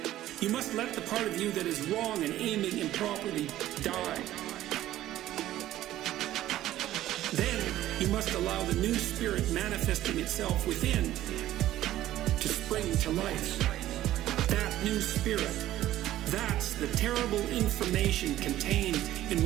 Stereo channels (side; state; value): left; quieter; 13.9 dB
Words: you must let the part of you that is wrong and aiming improperly die. Then you must allow the new spirit manifesting itself within to spring to life. That new spirit, that's the terrible information contained in